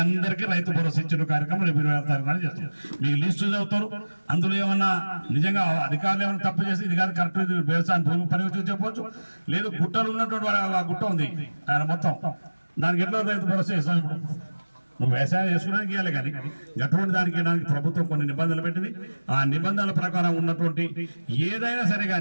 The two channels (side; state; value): both; inverted; correlation -1.00